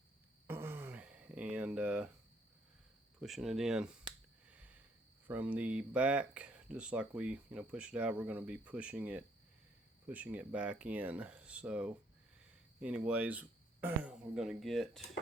and pushing it in from the back, just like we push it out. We're going to be pushing it back in. So anyways, we're going to get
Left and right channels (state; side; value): normal; both; correlation 0.67